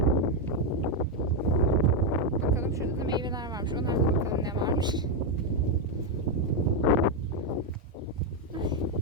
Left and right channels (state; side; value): normal; both; correlation 0.03